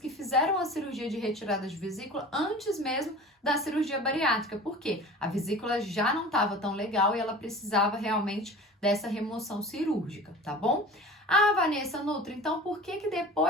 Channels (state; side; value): normal; both; correlation 0.38